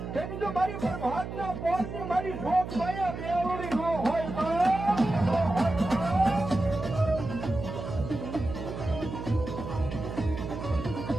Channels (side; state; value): right; noise; hum, 7 dB below the sound